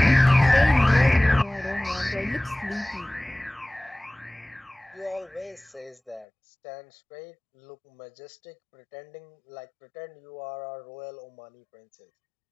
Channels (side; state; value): right; drops out; at 6.2 s